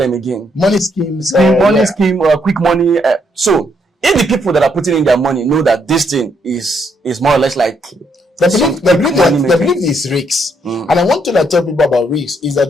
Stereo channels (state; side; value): normal; both; correlation 0.74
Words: again? Money schemes. Scheme, quick money. So if the people that are putting in their money know that this thing is more or less like the belief is risks. And I want to tell people about risks is that